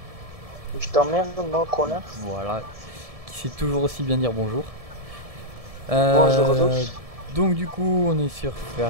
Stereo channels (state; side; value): late; left; 1.7 ms